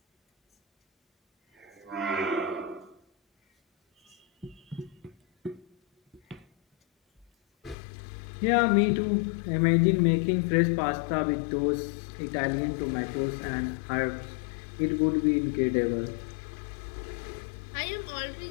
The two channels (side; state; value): right; drops out; at 7.8 s